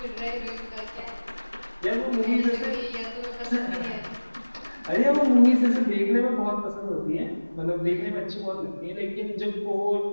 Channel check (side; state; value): both; inverted; correlation -1.00